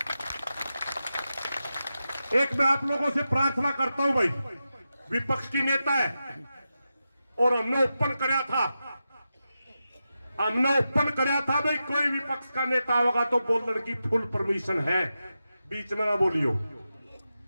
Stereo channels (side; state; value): both; inverted; correlation -0.90